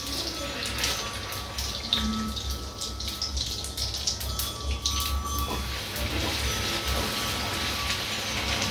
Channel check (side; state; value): both; identical; correlation 1.00